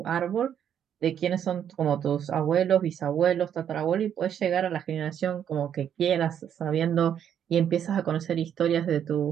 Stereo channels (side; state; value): left; quieter; 9.2 dB